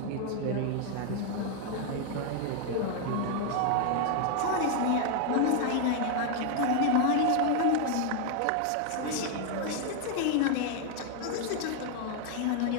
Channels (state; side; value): different; both; correlation 0.01